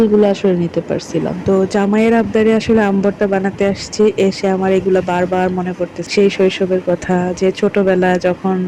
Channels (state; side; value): identical; both; correlation 1.00